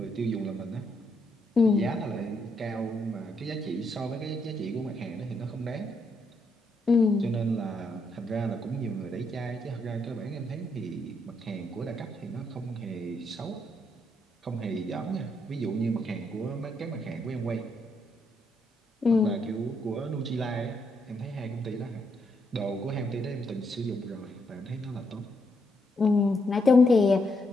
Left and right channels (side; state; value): both; normal; correlation 0.77